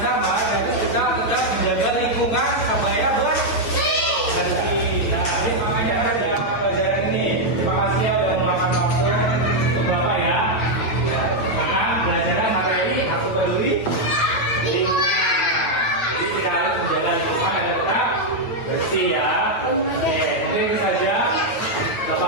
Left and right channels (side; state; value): right; late; 8.9 ms